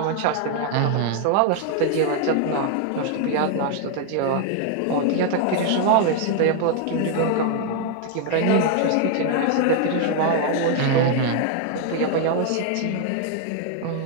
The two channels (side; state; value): both; different; correlation 0.00